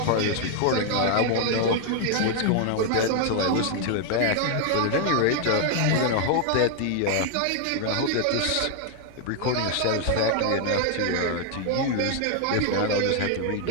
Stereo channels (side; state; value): both; different; correlation 0.00